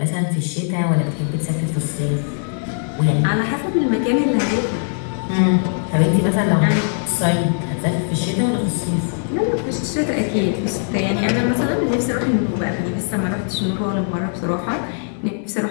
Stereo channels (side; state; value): right; silent; 62 dB below the other